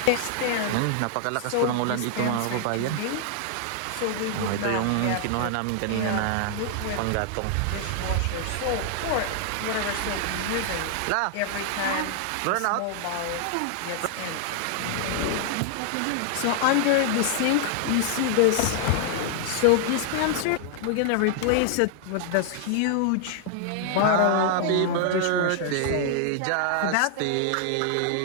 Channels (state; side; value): different; both; correlation -0.01